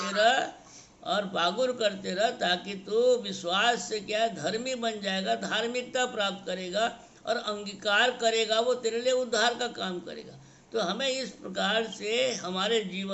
रह और बागुर करते रह, ताकि तू विश्वास से क्या धर्मी बन जाएगा, धार्मिकता प्राप्त करेगा और अंगीकार करेगा, वो तेरे लिए उद्धार का काम करेगा। तो हमें इस प्रकार से हमारे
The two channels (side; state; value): both; identical; correlation 1.00